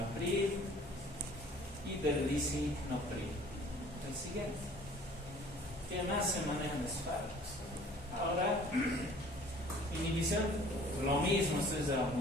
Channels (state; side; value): normal; both; correlation 0.51